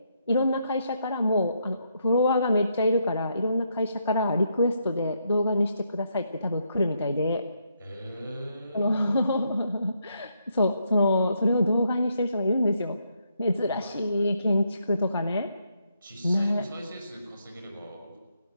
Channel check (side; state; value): both; inverted; correlation -0.77